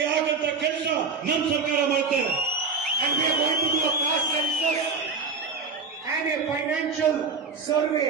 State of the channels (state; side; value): quieter; left; 4.6 dB